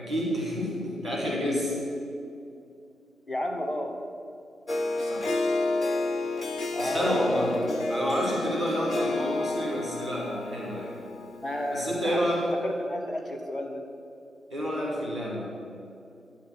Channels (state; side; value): normal; both; correlation 0.84